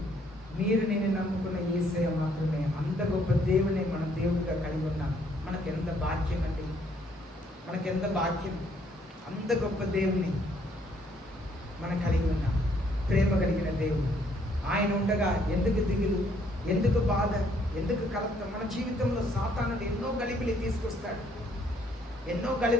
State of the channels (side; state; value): both; normal; correlation 0.67